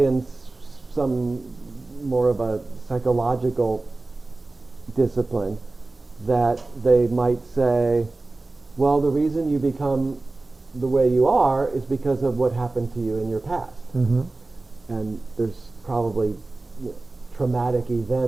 in some more of a psychological discipline, that they might say, well, the reason you become the way you are is because of what happened to you in your past. Mm-hmm. And there's probably traumatic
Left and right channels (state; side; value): quieter; left; 3.2 dB